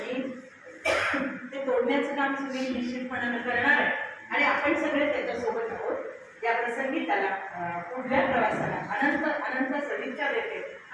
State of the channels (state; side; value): identical; both; correlation 1.00